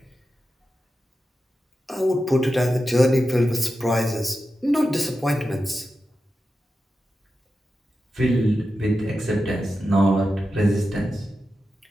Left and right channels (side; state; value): both; normal; correlation 0.91